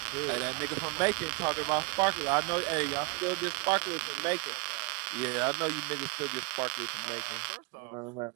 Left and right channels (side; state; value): left; quieter; 30.9 dB